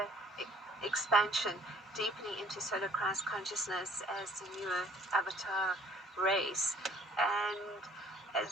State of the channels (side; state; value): both; normal; correlation 0.57